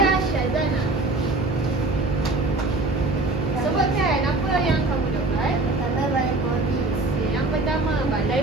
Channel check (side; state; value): left; quieter; 3.1 dB